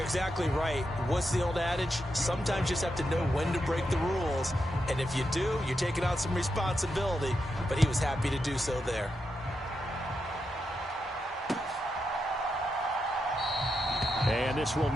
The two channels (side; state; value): both; normal; correlation 0.85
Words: exactly right. What's the old adage? Sometimes you just have to know when to break the rules. And if you do, you're taking on some responsibility. But he was happy to do so there. And this will